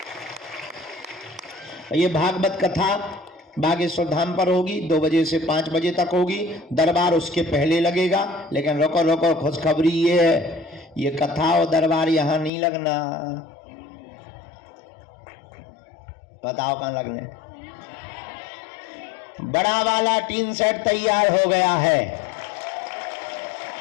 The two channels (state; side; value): drops out; right; at 12.5 s